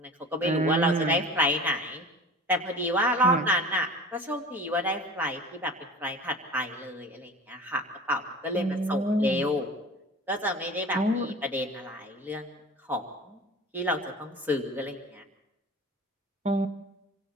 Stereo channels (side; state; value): both; normal; correlation 0.39